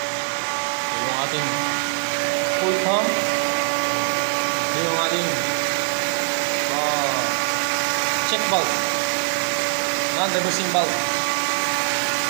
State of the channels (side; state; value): left; silent; digital silence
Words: Ito yung ating pool pump. Ito yung ating check bulb. Non-reversing bulb.